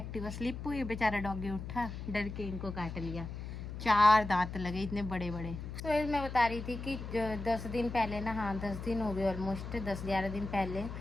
स्लिप हुई, बेचारा डॉगी उठा, डर के इनको काट लिया। 4 दांत लगे इतने बड़े बड़े। तो मैं बता रही थी कि 10 दिन पहले ना, हाँ 10 दिन हो गए ऑलमोस्ट, 10-11 दिन पहले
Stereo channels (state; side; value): noise; left; hum, 8 dB below the sound